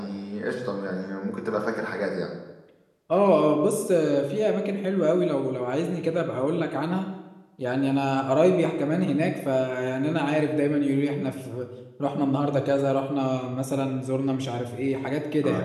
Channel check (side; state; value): both; identical; correlation 1.00